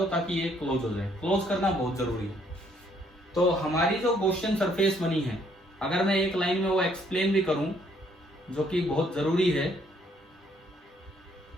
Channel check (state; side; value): normal; both; correlation 0.67